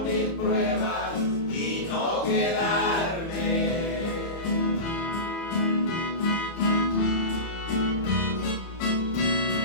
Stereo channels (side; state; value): right; late; 30 ms